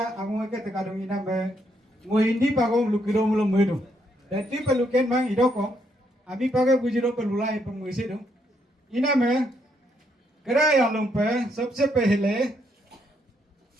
among ke tekadung ina me ngo hindi pagong lukiro mulo medu dati peluken mang idoko ami pagai bujiro pelulai penguisi dong ina me किराया लोग पे सबसे पहले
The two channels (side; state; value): both; normal; correlation 0.75